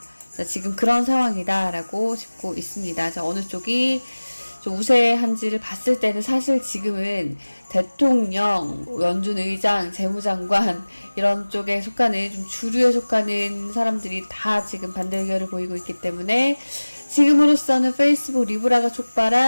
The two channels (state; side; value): inverted; both; correlation -1.00